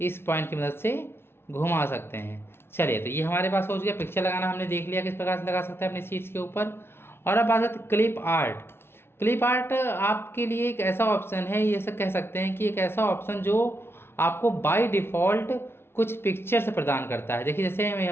इस पॉइंट की मदद से घुमा सकते हैं। चलिए, तो ये हमारे पास हो गया। पिक्चर लगाना हमने देख लिया किस प्रकार से लगा सकते हैं अपनी सीट्स के ऊपर। और अब बात करते हैं क्लिप आर्ट। क्लिप आर्ट आपके लिए एक ऐसा ऑप्शन है, ये सब कह सकते हैं कि एक ऐसा ऑप्शन जो आपको बाय डिफ़ॉल्ट कुछ पिक्चर्स प्रदान करता है। देखिए जैसे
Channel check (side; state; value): right; late; 0.12 ms